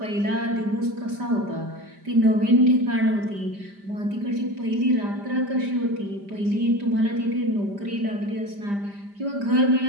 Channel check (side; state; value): left; late; 5.0 ms